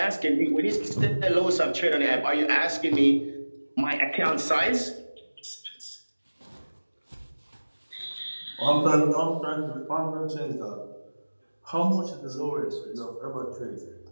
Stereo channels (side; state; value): both; inverted; correlation -1.00